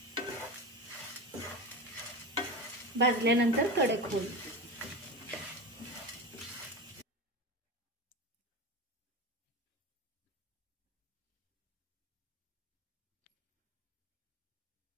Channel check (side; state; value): both; normal; correlation 0.25